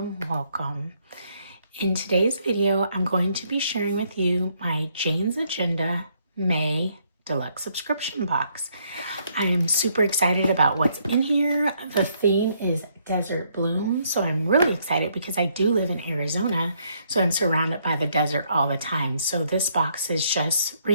welcome. In today's video, I'm going to be sharing with you my Jane's Agenda May Deluxe Subscription Box. I am super excited about what's in here. The theme is Desert Bloom, so I'm really excited because I do live in Arizona, so I'm surrounded by the desert all the time. So this box is just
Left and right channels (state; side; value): inverted; both; correlation -0.71